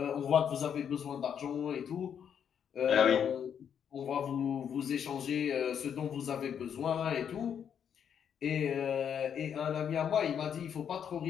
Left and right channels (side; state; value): right; quieter; 8.2 dB